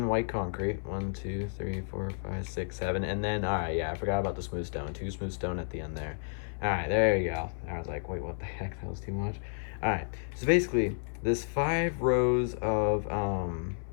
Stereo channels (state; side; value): silent; right; 57 dB below the other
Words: white concrete. 1, 2, 3, 4, 5, 6, 7. And then, alright, yeah, I forgot about the smooth stone. 2 smooth stone at the end there. Alright, there you go. I was like, wait, what the heck? That was too much. Alright, so basically, this 5 rows of,